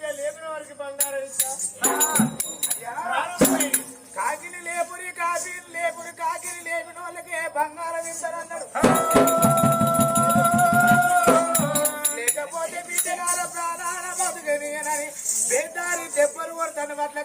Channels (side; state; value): both; identical; correlation 1.00